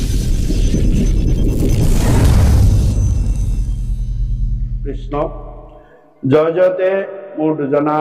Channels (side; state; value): both; identical; correlation 1.00